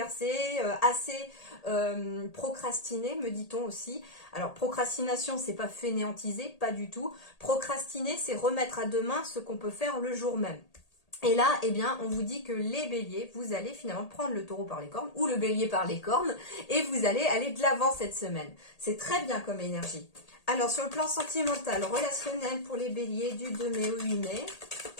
assez procrastiné, me dit-on aussi. Alors, procrastination, c'est pas fainéantiser, pas du tout. Procrastiner, c'est remettre à demain ce qu'on peut faire le jour même. Et là, on vous dit que les béliers, vous allez finalement prendre le taureau par les cornes, ou le bélier par les cornes, et vous allez aller de l'avant cette semaine. C'est très bien comme énergie. Alors, sur le plan sentimental, relationnel pour les béliers du 2 mai au 8 mai,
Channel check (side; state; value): right; late; 1.8 ms